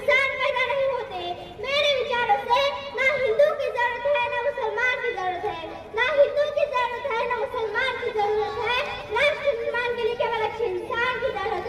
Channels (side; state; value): both; identical; correlation 1.00